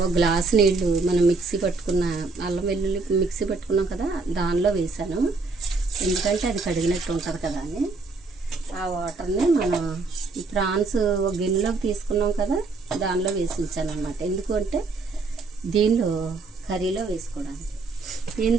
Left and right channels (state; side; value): quieter; left; 3.8 dB